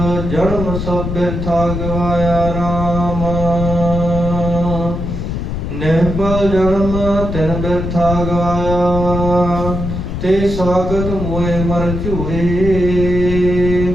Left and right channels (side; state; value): left; noise; rumble, 4 dB below the sound